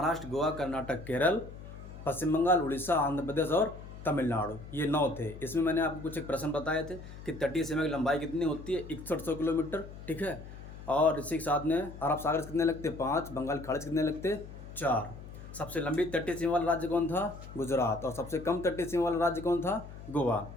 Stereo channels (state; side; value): noise; left; hum, 14 dB below the sound